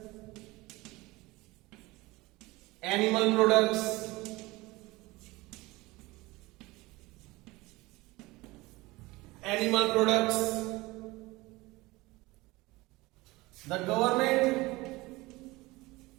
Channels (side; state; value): left; quieter; 21.2 dB